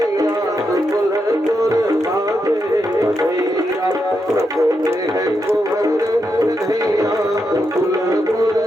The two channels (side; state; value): both; normal; correlation 0.84